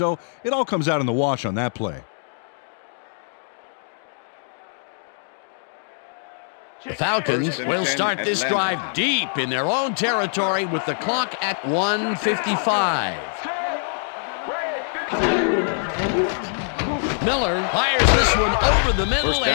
it all comes out in the wash on that play. The Falcons will start this drive deep in their own territory with the clock at 1:55. Miller fires this one over the middle, First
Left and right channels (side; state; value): right; silent; 63 dB below the other